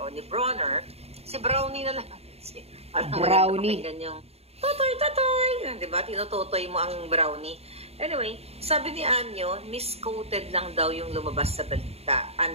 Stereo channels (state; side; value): late; left; 0.30 ms